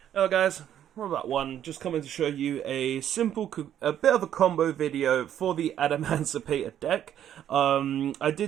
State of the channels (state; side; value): quieter; left; 10.5 dB